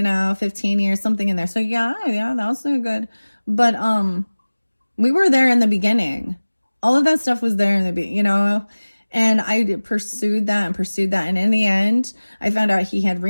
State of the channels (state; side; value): inverted; both; correlation -1.00